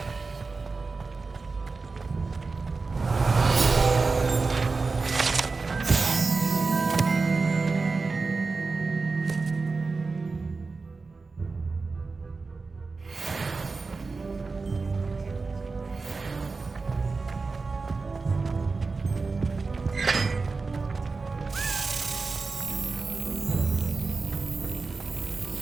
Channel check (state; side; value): quieter; left; 4.1 dB